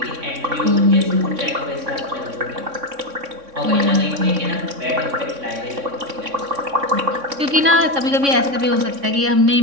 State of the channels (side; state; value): left; late; 3.6 ms